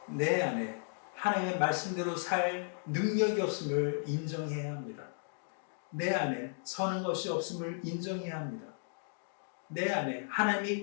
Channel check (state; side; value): silent; right; digital silence